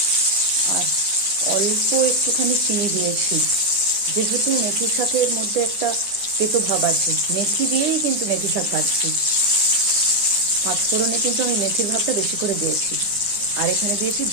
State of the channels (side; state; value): left; late; 9.9 ms